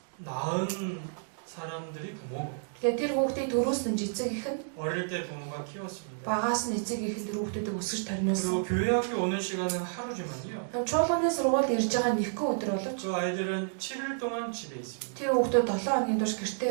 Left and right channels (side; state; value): left; silent; digital silence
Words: 낳은 사람들이 부모고 Тэгэхээр тэр хүүхдийг төрүүлсэн эцэг эх нь 어릴 때 부모가 키웠습니다. багаас нь эцэг эх нь тэр хүүхдүүдийг өсгөж тарниулсан. 그리고 교회 학교 오는 시간은 하루지만요. Чуулганы сургуульд ирж байгаа нэгэн өдөр боловч 그 아이들은 7일 동안 집에 있습니다. тэр хүүхдүүд 7 хоногийн турш